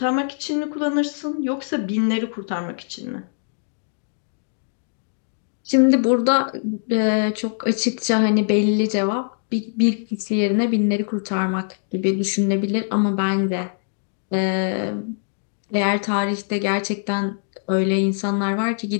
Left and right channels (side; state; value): right; silent; digital silence